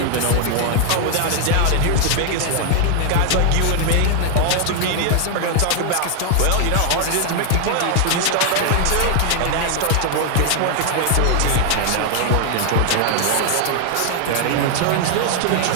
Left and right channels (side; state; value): both; different; correlation 0.00